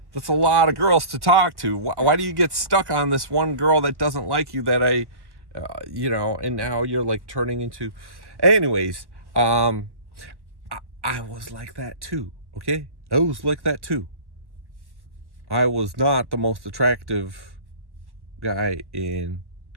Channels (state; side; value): late; left; 1.1 ms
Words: That's a lot of girls to talk to. Why do you get stuck on this one girl that doesn't like you that and now you're like turning into... Anyways, I was like that too, okay? I was like that too. I was not the most attractive guy in